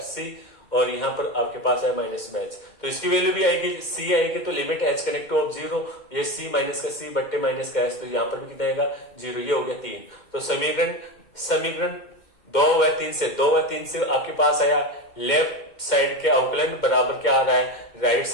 और यहाँ पर आपके पास है माइनस में एच, तो इसकी वैल्यू भी आएगी सी आएगी, तो limit H connect to of 0, ये सी माइनस का सी बट्टे माइनस का एच, तो यहाँ पर भी कितना आएगा 0, ये हो गया 3। तो समीकरण 2 व 3 से आपके पास आया लेफ्ट साइड के अवकलन बराबर क्या आ रहा है, राइट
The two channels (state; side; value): late; right; 2.1 ms